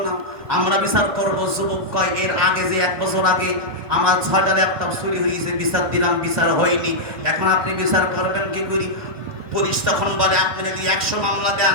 না, আমরা বিচার করবো। যুবক কয়, এর আগে যে 1 বছর আগে আমার 6টা ল্যাপটপ চুরি হয়েছে, বিচার দিলাম, বিচার হয়নি, এখন আপনি বিচার করবেন কি করি? পুলিশ তখন বলে, আপনি যদি 100 মামলা দেন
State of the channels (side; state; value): left; late; 1.5 ms